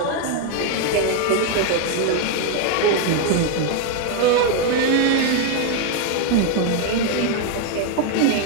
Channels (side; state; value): both; different; correlation 0.01